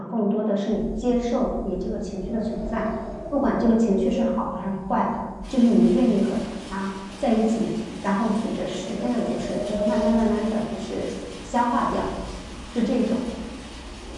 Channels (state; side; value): identical; both; correlation 1.00